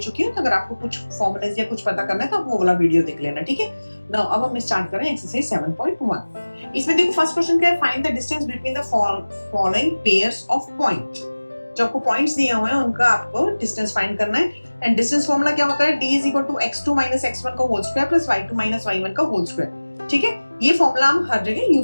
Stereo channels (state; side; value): inverted; both; correlation -1.00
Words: हूँ। तो अगर आपको कुछ फॉर्मूलेज या कुछ पता करना है तो आप वो वाला वीडियो देख लेना, ठीक है। नाउ अब हम स्टार्ट करें एक्सरसाइज 7.1। इसमें देखो फर्स्ट क्वेश्चन क्या है, find the distance between the following pairs of point. जो आपको पॉइंट्स दिए हुए हैं उनका आपको डिस्टेंस फाइंड करना है। एंड डिस्टेंस फॉर्मूला क्या होता है, d is equal to x2 minus x1 का whole square plus y2 minus y1 का होल स्क्वायर, ठीक है। ये फॉर्मूला हम हर जगह